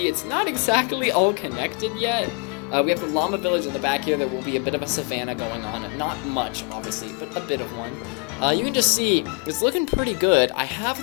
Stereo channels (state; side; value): quieter; right; 34.4 dB